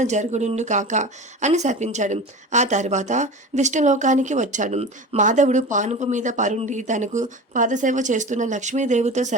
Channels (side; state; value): both; normal; correlation 0.32